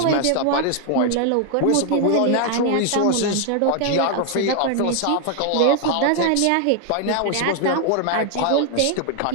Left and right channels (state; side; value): different; both; correlation 0.00